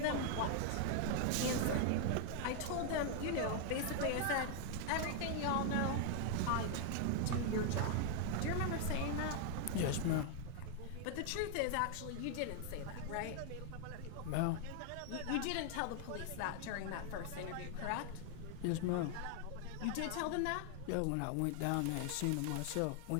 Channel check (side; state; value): both; different; correlation 0.00